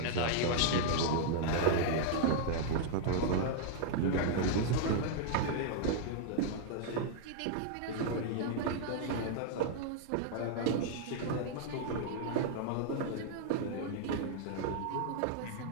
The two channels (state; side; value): different; both; correlation -0.01